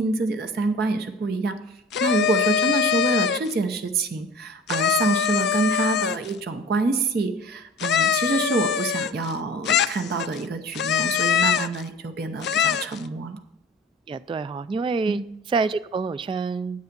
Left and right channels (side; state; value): both; normal; correlation 0.41